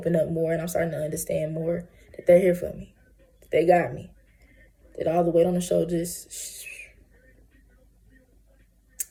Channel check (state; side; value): identical; both; correlation 1.00